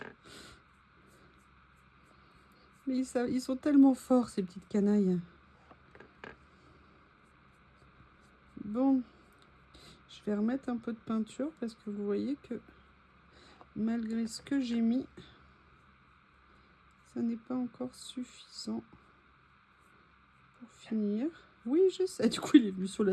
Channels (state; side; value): identical; both; correlation 1.00